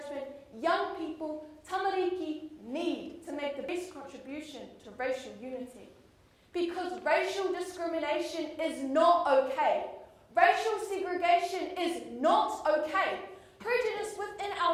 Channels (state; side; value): identical; both; correlation 1.00